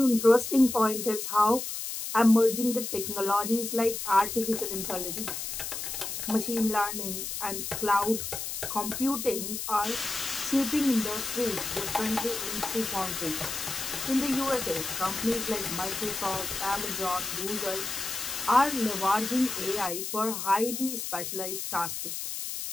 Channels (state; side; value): noise; left; hiss, 5 dB below the sound